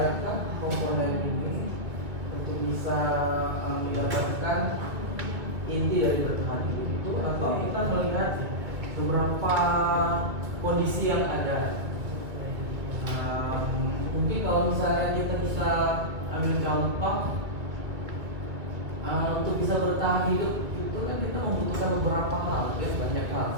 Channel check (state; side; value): late; left; 2.1 ms